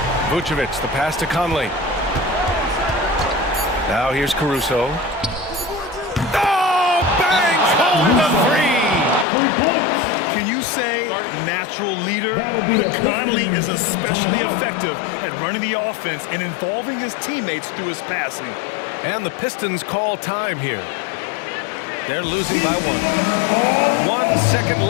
Vucevic, the pass to Conley. Now here's Caruso. Oh, bangs home the three. Can you say natural leader? Conley is especially effective at running the offense and involving his teammates through his passing. And the Pistons call time here. They're losing by 1. 1 second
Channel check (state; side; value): drops out; right; at 9.2 s